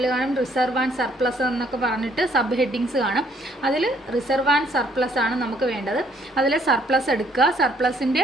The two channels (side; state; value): both; normal; correlation 0.66